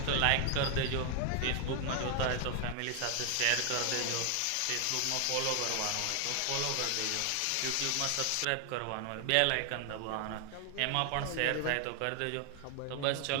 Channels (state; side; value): different; both; correlation 0.00